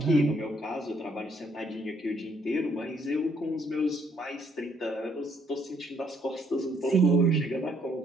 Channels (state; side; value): normal; both; correlation 0.68